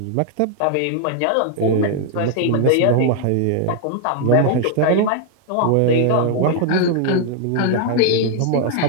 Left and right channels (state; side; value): different; both; correlation 0.00